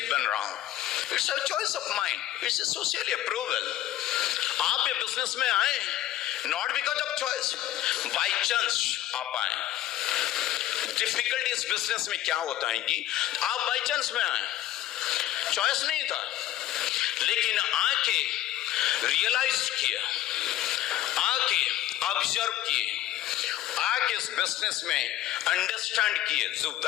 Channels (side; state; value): right; quieter; 13.5 dB